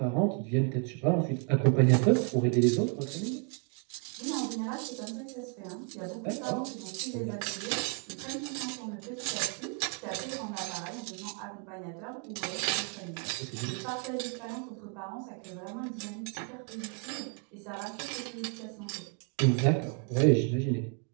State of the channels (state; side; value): quieter; left; 38.5 dB